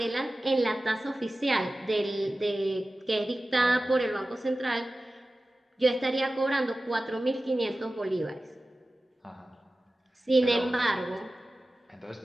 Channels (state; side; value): normal; both; correlation 0.96